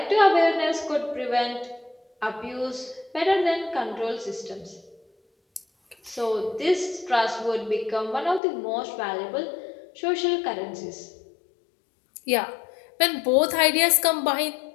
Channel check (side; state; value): right; drops out; at 8.4 s